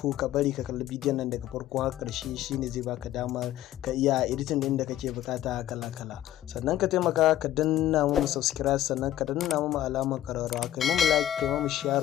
ka bari ka kalli bidiyon nan daga farko har karshe, shine zai baka damar ka iya editing din da kake bukata kala kala. Sannan ka taimaka ka danna mu subscribe, sannan ka danna mu alamar kararrawa, kai mu like, kai mu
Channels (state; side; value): quieter; right; 12.8 dB